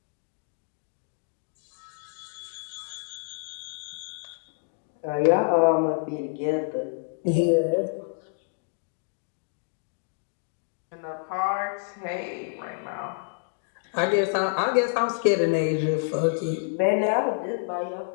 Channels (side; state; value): right; silent; digital silence